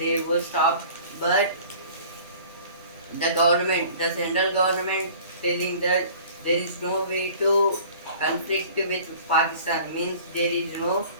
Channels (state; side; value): inverted; both; correlation -0.47